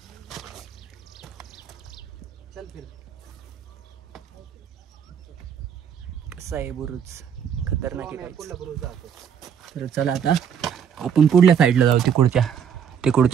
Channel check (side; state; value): left; quieter; 8.0 dB